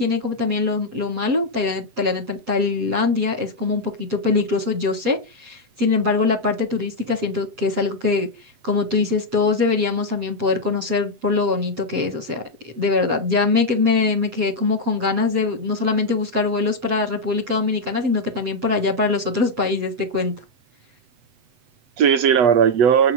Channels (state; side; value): late; left; 7.9 ms